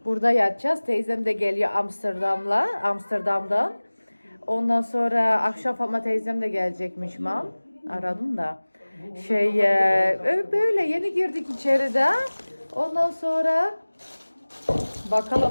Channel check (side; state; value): both; inverted; correlation -1.00